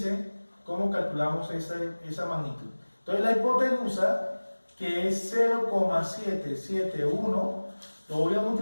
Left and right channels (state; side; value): inverted; both; correlation -1.00